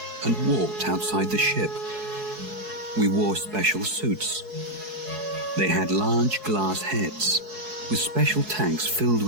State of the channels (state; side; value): late; left; 4.7 ms